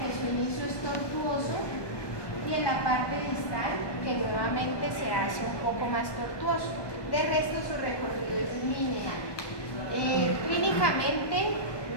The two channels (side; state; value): right; late; 1.2 ms